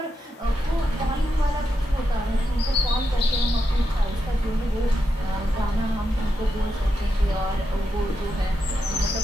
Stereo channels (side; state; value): both; normal; correlation 0.86